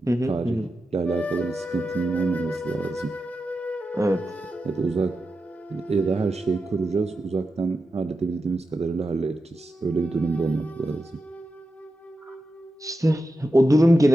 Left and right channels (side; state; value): both; normal; correlation 0.90